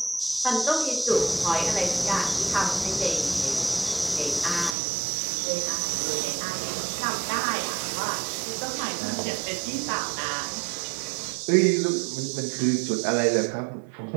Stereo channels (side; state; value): left; drops out; at 4.8 s